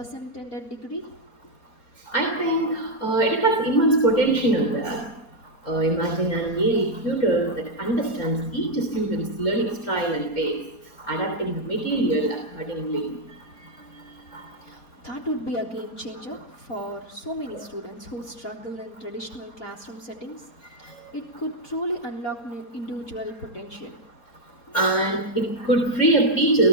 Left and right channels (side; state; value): right; late; 4.3 ms